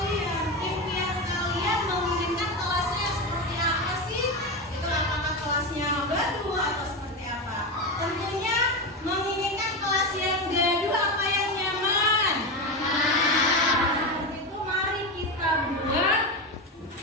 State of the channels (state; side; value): normal; both; correlation 0.17